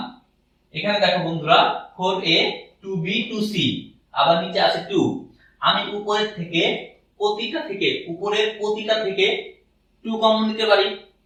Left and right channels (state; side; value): identical; both; correlation 1.00